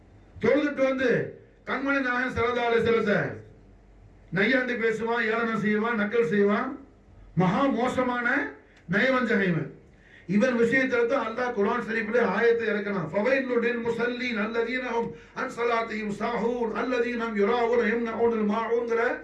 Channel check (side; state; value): both; identical; correlation 1.00